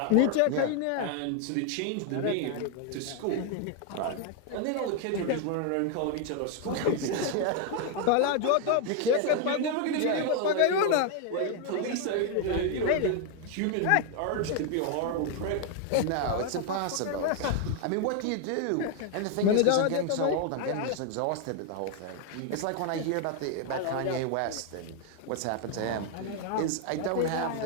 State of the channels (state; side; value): different; both; correlation 0.00